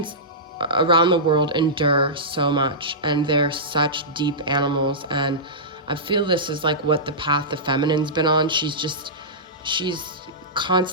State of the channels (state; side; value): normal; both; correlation -0.16